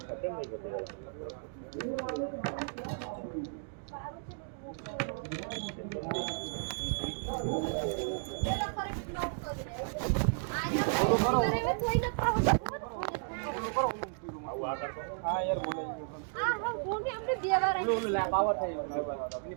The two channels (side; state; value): left; silent; digital silence